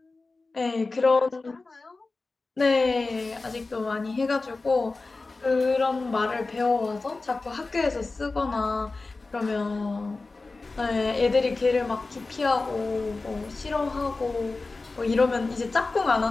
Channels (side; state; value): right; quieter; 3.6 dB